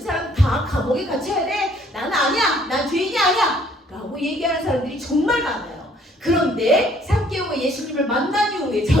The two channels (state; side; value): normal; both; correlation 0.61